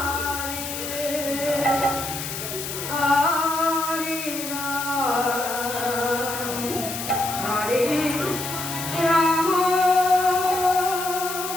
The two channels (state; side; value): noise; left; hiss, 6 dB below the sound